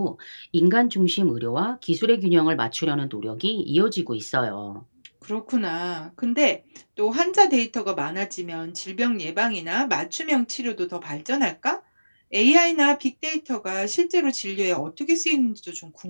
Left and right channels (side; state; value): both; inverted; correlation -1.00